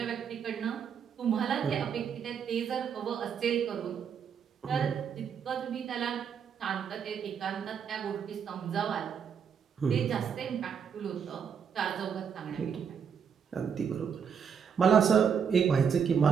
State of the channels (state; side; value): quieter; left; 7.1 dB